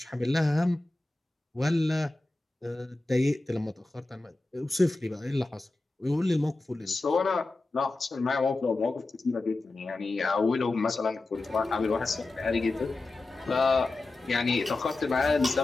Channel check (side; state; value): right; quieter; 3.0 dB